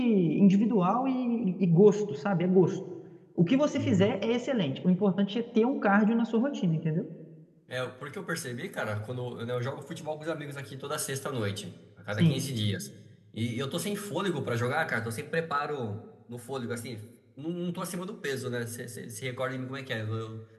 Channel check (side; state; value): both; identical; correlation 1.00